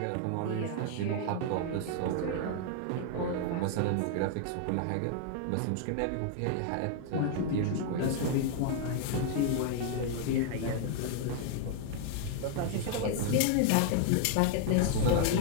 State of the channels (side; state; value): both; different; correlation 0.00